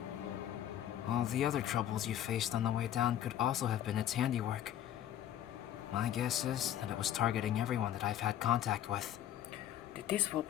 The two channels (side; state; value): right; quieter; 11.3 dB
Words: All the other troubles you faced on the way down could also have been its handiwork. My guess is that it was targeting everyone that I've had contact with. Did this